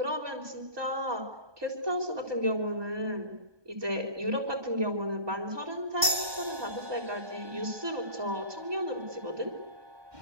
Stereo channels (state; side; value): late; left; 1.2 ms